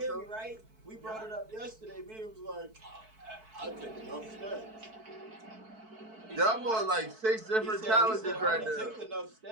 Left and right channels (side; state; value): left; late; 4.6 ms